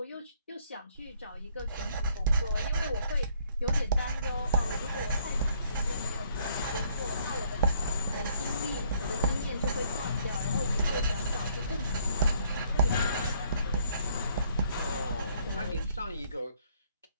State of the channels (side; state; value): both; inverted; correlation -0.64